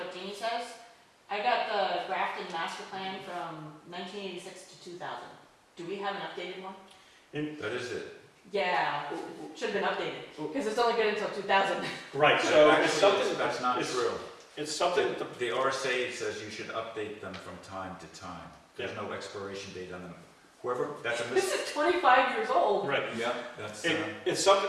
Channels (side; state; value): both; identical; correlation 1.00